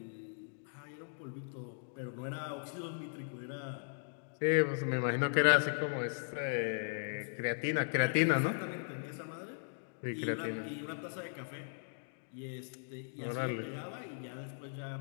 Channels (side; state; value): right; silent; digital silence